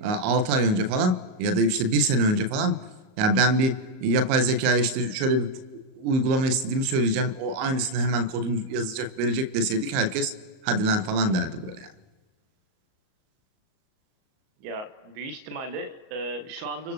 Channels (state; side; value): late; left; 38 ms